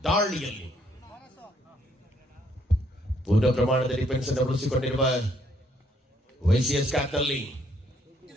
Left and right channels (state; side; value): normal; both; correlation 0.69